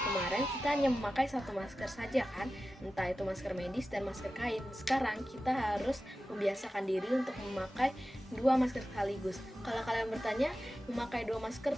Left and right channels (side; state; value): both; normal; correlation 0.94